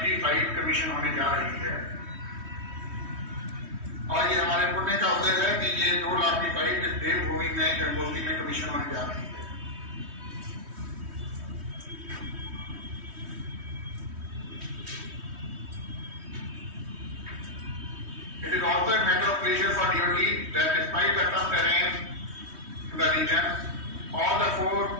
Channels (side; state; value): left; late; 3.2 ms